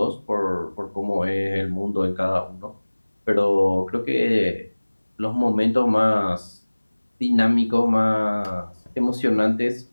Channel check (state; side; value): inverted; both; correlation -1.00